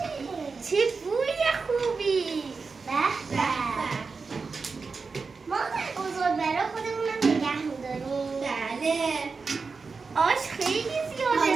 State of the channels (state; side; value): quieter; left; 4.6 dB